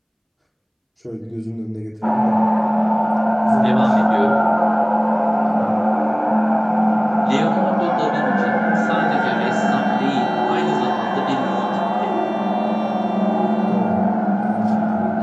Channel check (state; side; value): identical; both; correlation 1.00